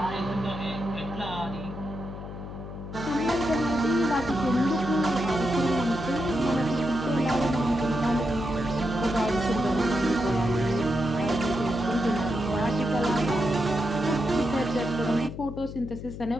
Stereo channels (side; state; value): left; noise; hum, 10 dB below the sound